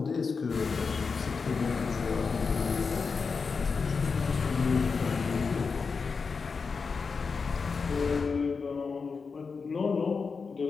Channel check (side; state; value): right; quieter; 5.0 dB